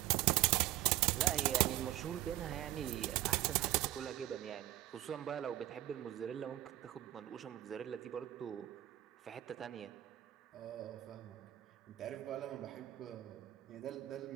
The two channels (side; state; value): left; quieter; 15.0 dB